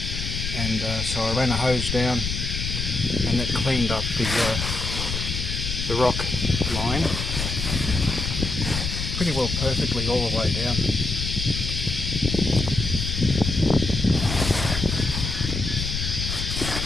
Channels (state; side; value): noise; left; rumble, 3 dB below the sound